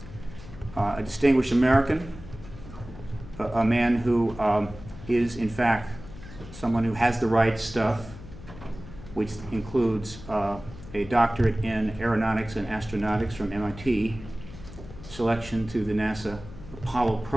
distinguished American, a man who is in fact someone who has the right stuff, which includes a doctorate in aeronautics and astronautics from MIT, selection to the NASA Apollo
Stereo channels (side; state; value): left; noise; hum, 15 dB below the sound